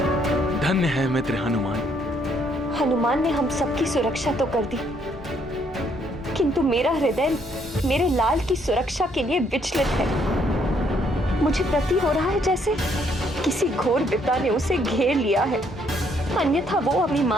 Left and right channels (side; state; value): both; normal; correlation 0.69